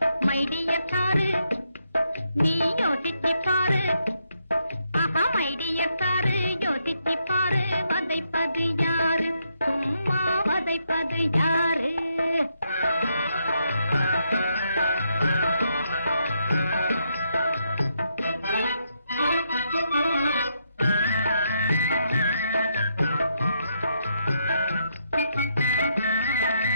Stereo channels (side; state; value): both; inverted; correlation -0.78